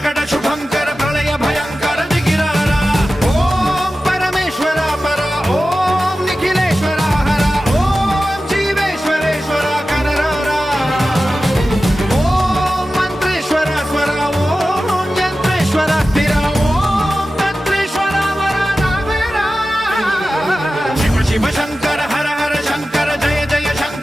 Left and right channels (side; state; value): both; normal; correlation 0.94